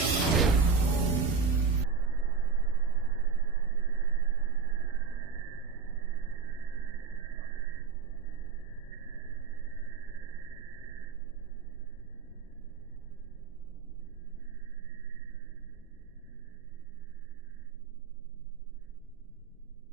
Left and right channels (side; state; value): left; quieter; 5.4 dB